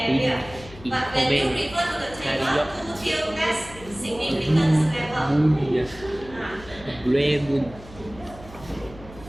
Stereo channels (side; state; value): left; noise; hum, 18 dB below the sound